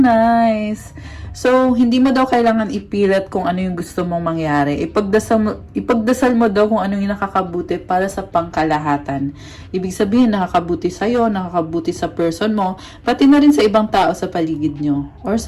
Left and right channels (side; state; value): both; identical; correlation 1.00